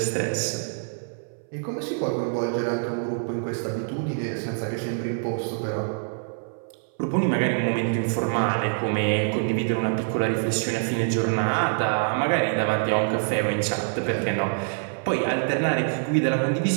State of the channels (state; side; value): silent; left; 59 dB below the other